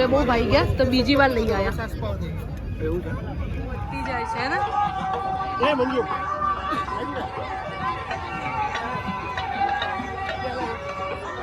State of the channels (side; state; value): both; identical; correlation 1.00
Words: બહુ ભાઈ ગયા તો બીજી વાર લઈ આવ્યા. જાય છે ને.